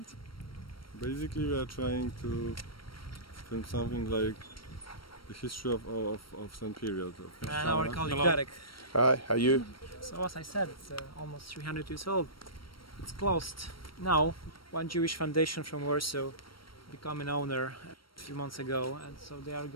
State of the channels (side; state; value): right; late; 0.74 ms